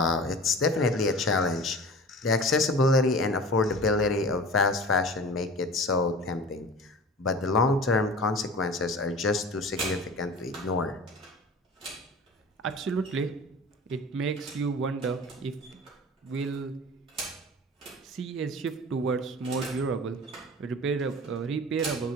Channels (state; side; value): normal; both; correlation 0.38